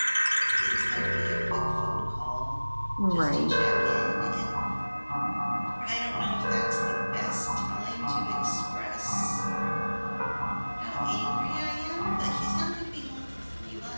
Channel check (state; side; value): inverted; both; correlation -1.00